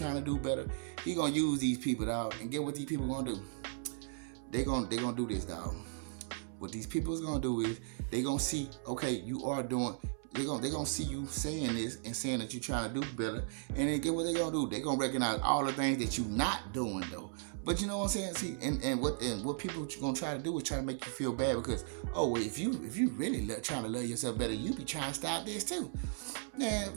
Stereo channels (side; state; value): left; silent; 54 dB below the other